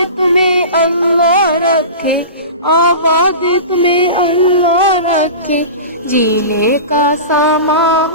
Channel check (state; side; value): inverted; both; correlation -0.32